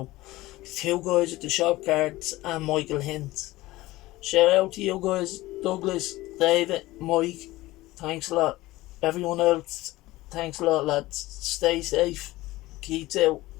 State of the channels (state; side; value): quieter; right; 18.4 dB